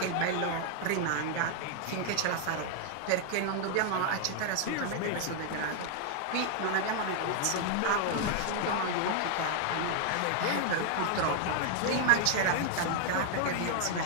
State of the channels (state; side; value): different; both; correlation 0.00